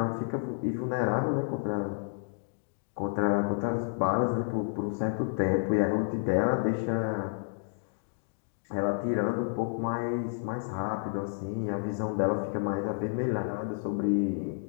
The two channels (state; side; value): silent; right; digital silence